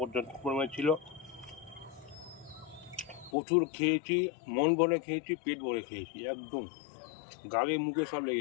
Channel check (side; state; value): right; drops out; at 3.3 s